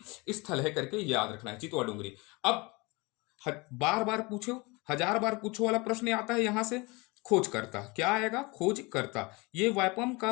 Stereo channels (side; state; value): right; quieter; 25.8 dB